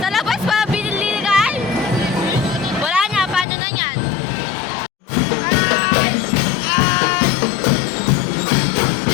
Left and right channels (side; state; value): right; drops out; at 3.5 s